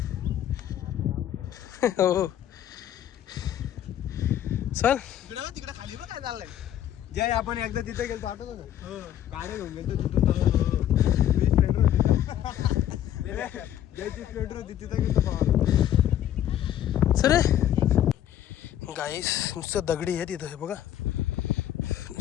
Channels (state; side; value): quieter; right; 11.4 dB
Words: हो चल तिकडे खाली बघ काय चाललंय. जय आपण एकदा तिथे गेलो आठवतो ना गाडी घेऊन गेलो जयची स्प्लेंडर होती तिथे गेलो. सर गाईस नुसतं दगडी आहे तिथं. हे बघा